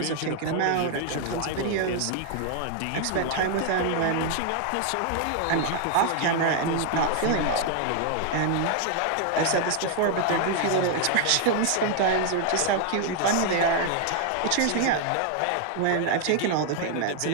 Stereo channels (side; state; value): both; different; correlation 0.00